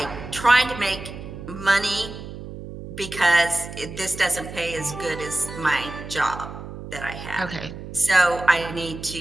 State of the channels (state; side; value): noise; right; hum, 11 dB below the sound